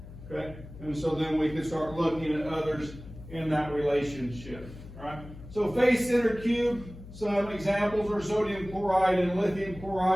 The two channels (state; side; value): noise; left; hum, 15 dB below the sound